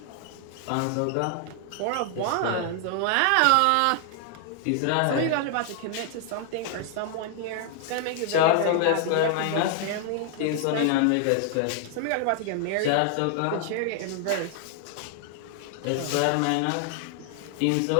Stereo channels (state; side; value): different; both; correlation 0.00